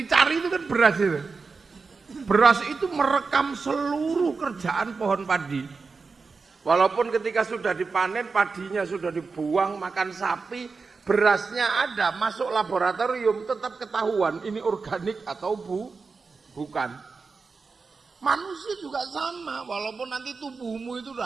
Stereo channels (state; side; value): quieter; left; 4.6 dB